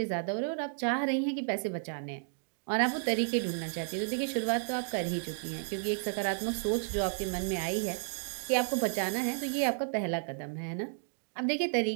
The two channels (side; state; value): left; silent; digital silence